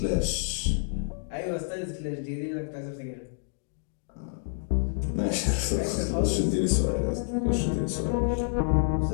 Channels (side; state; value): right; silent; digital silence